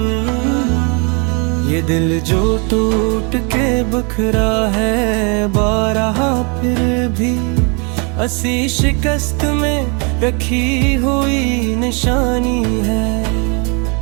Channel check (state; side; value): quieter; left; 34.2 dB